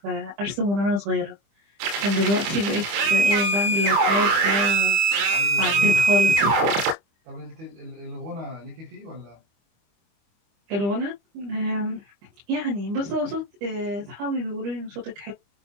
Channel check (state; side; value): late; left; 25 ms